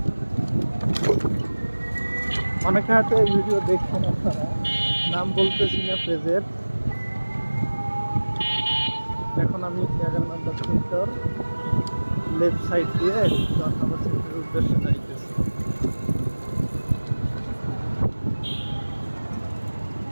অনেকে হয়তো এই ভিডিও দেখছেন, আপনারা নাম বলতেছি না পেজের। এখন আমি 11 নম্বর সেক্টর লেফট সাইড দিয়ে 10 নম্বর সেক্টরের উদ্দেশ্যে যাইতেছি।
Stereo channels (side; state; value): both; inverted; correlation -1.00